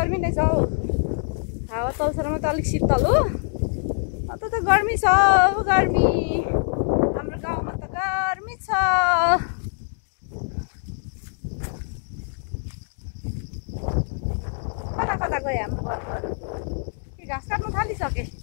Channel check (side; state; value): right; silent; digital silence